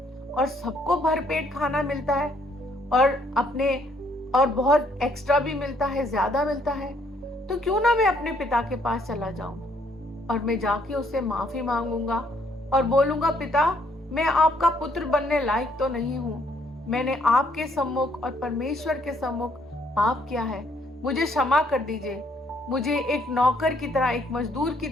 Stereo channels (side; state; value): both; normal; correlation 0.68